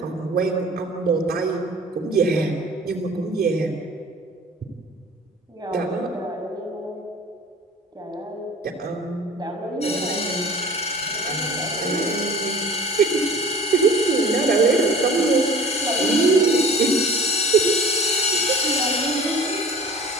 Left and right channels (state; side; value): normal; both; correlation 0.43